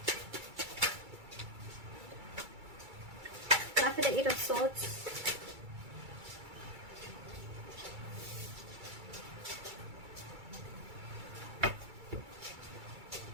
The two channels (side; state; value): left; late; 2.3 ms